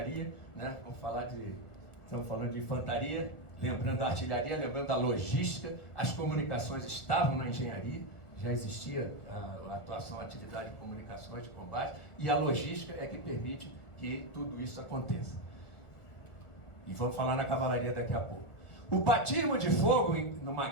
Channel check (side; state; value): right; late; 1.4 ms